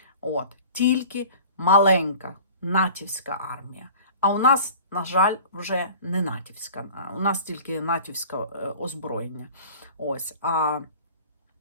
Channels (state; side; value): inverted; both; correlation -0.43